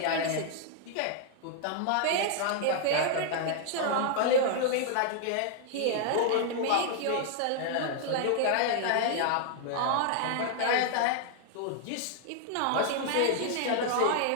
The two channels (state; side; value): different; both; correlation 0.00